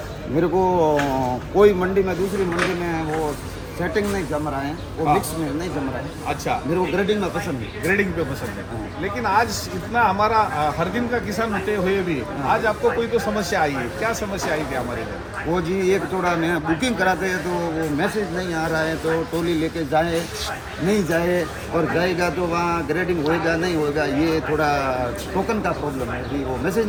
मेरे को कोई मंडी में दूसरी मंडी में वो सेटिंग नहीं जम रहा है, वो हाँ। मिक्स में नहीं जम रहा है। अच्छा, मेरे को ग्रेडिंग में पसंद है। ग्रेडिंग पे पसंद है। हाँ। लेकिन आज इतना हमारा हर दिन का किसान होते हुए भी आज आपको कोई तो समस्या आई है, क्या समस्या आई थी हमारे लिए? वो जी एक थोड़ा मैं बुकिंग कराते हैं तो वो मैसेज नहीं आ रहा है, तो टोली लेके जाए नहीं जाए, और जाएगा तो वहाँ ग्रेडिंग होएगा नहीं होएगा, ये थोड़ा टोकन का प्रॉब्लम है जी, वो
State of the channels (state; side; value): identical; both; correlation 1.00